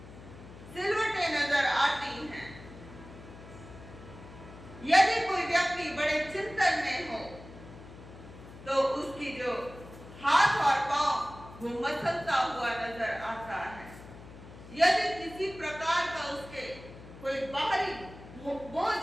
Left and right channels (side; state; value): left; noise; hum, 17 dB below the sound